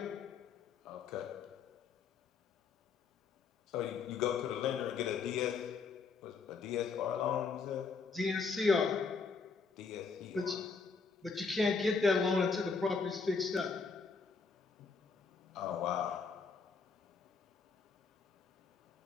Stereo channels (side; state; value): right; quieter; 5.0 dB